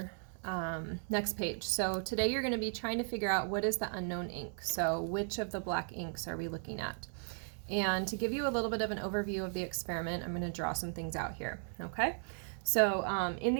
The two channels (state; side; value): silent; left; 54 dB below the other